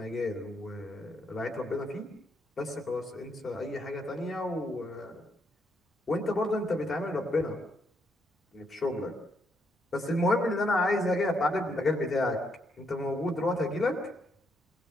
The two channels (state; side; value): normal; both; correlation 0.76